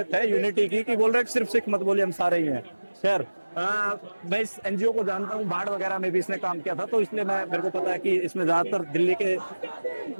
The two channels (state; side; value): inverted; both; correlation -1.00